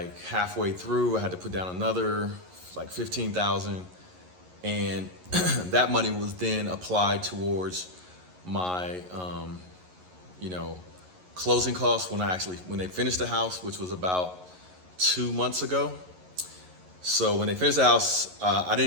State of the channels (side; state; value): left; late; 11 ms